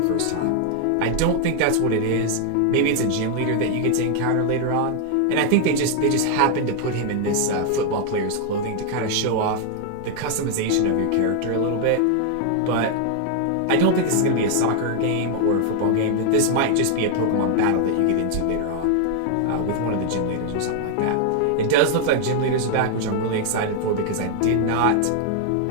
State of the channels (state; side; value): different; both; correlation 0.00